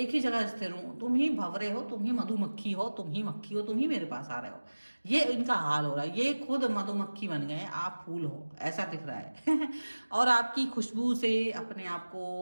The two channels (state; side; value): inverted; both; correlation -1.00